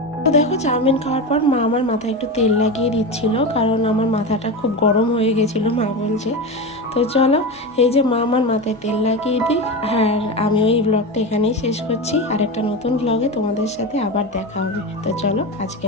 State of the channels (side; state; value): both; normal; correlation 0.21